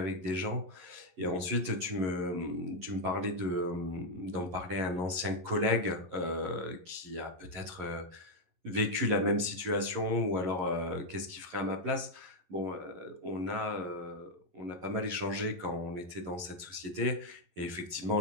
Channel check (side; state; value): left; late; 11 ms